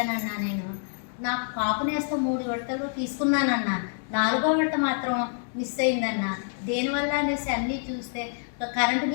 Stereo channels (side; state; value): right; silent; 60 dB below the other